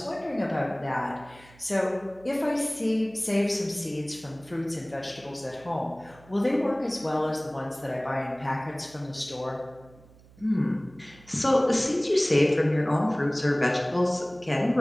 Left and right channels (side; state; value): right; noise; hum, 25 dB below the sound